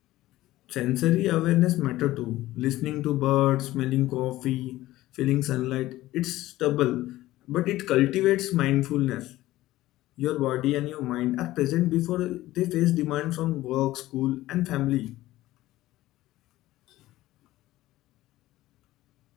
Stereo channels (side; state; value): right; quieter; 16.3 dB